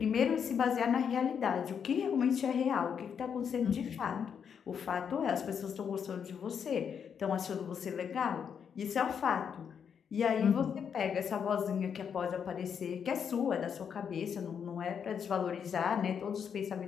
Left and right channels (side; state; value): right; quieter; 7.4 dB